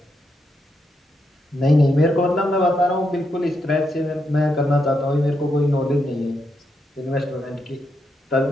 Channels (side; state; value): both; normal; correlation 0.82